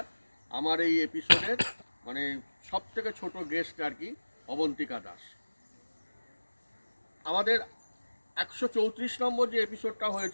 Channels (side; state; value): both; inverted; correlation -1.00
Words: আমার এই এপিসোডের মানে সব থেকে ছোট গেস্ট আর কি, অবন্তিকা দাস। আমাদের 134 নম্বর যে এপিসোডটা